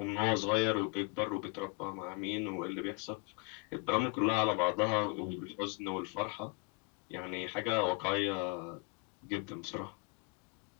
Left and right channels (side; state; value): right; quieter; 29.5 dB